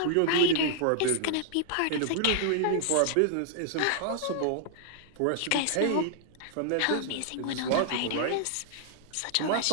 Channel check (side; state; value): both; different; correlation -0.01